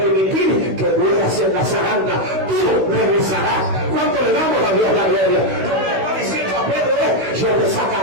que mueras en la zaranda. Tú regresarás. ¿Cuánto le damos a Dios la gloria? Lo que le está diciendo a Pedro es: yo te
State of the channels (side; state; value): left; late; 16 ms